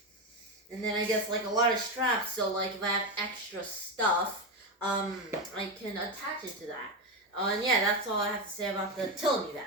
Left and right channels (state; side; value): normal; both; correlation 0.12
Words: and then I guess like a lot of straps. So like if I have extra stuff, I can attach it to that. And yeah, that's all I have to say about the Tilami